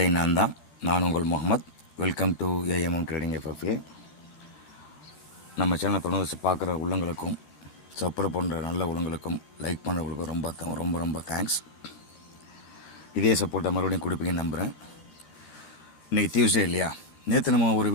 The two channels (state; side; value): late; right; 13 ms